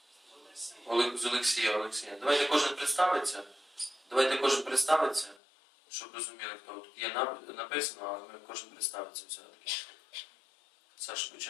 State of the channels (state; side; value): drops out; right; at 5.4 s